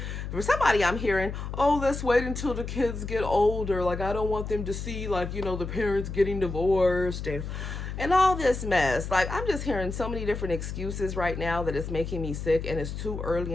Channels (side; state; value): left; noise; hum, 6 dB below the sound